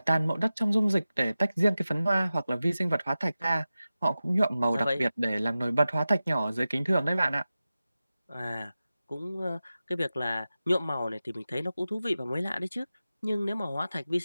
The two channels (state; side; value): inverted; both; correlation -0.95